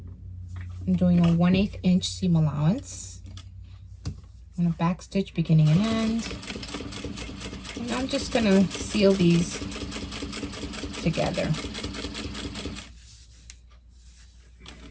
I'm doing a 1/8 inch seam allowance. I'm going to back stitch beginning and end. And I'm just going to seal these together.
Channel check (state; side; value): identical; both; correlation 1.00